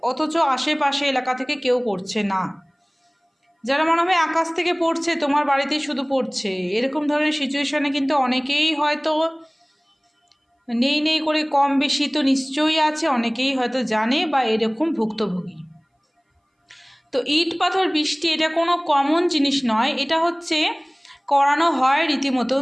অথচ আশেপাশে এলাকা থেকে কেউ করছে না। যারা মনে হয় আকাশ থেকে পড়ছে, তোমার বাড়িতেই শুধু পড়ছে, এরকম ধরনের সিচুয়েশনে কিন্তু অনেকেই হয়তো নেই নেই করে কম বেশি তো নিশ্চয়ই আছে, অনেকেই হয়তো জানে বা এরকম ভুক্তভোগী। তো ইট পাথর বৃষ্টি এটা কোনো কমন জিনিস নয়, এটা হচ্ছে করানো হয় রীতিমতন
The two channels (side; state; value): both; identical; correlation 1.00